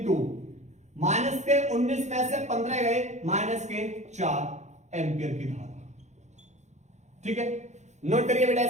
माइनस के 19 में से 15 गए, माइनस के 4 एम्पियर की धारा। ठीक है, नोट करिए बेटा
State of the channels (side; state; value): left; late; 0.33 ms